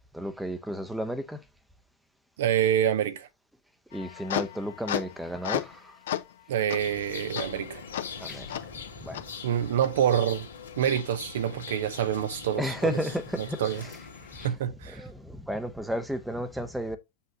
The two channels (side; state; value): left; quieter; 4.6 dB